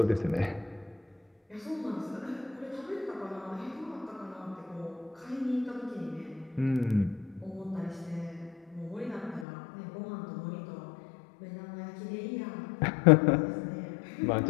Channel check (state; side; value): drops out; right; at 9.5 s